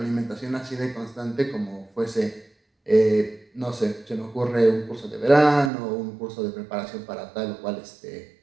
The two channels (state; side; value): drops out; left; at 5.7 s